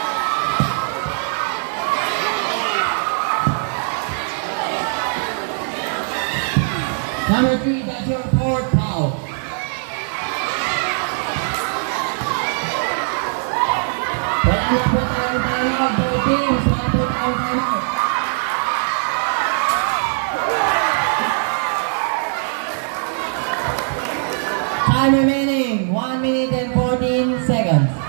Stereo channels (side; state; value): left; silent; 60 dB below the other